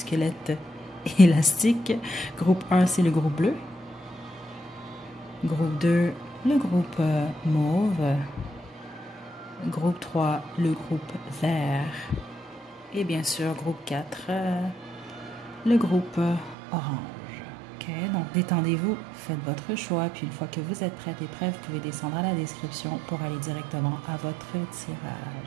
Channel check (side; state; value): left; drops out; at 16.6 s